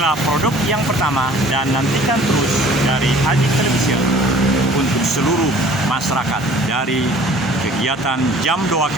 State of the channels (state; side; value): normal; both; correlation 0.50